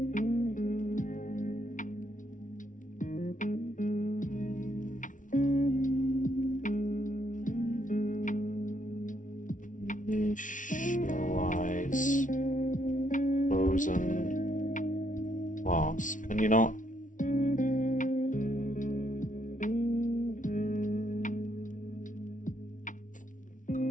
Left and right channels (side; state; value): right; late; 0.37 ms